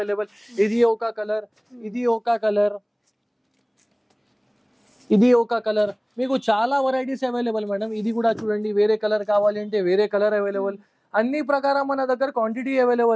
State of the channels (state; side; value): identical; both; correlation 1.00